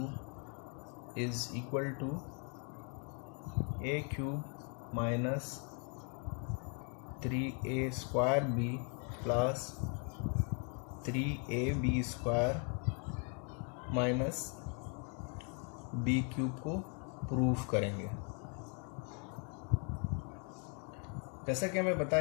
is equal to a cube minus 3a square B plus 3ab square minus B cube को proof करेंगे। जैसा कि हमें पता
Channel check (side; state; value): right; quieter; 39.2 dB